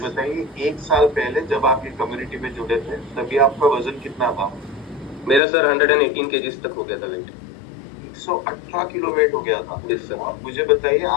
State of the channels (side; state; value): right; drops out; at 5.4 s